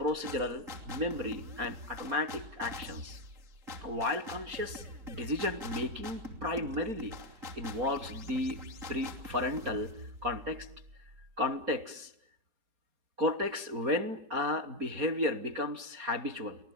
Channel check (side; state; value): left; late; 4.3 ms